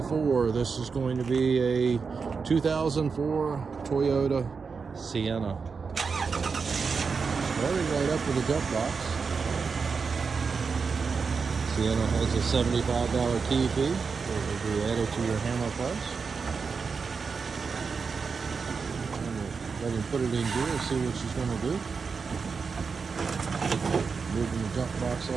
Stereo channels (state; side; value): quieter; left; 5.2 dB